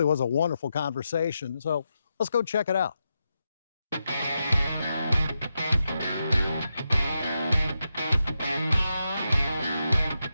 was a wonderful conversation, so let's go check it out.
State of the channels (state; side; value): inverted; both; correlation -0.86